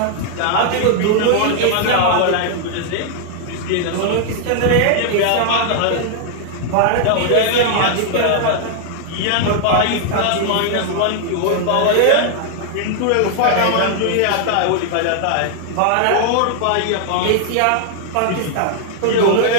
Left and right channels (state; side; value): different; both; correlation 0.00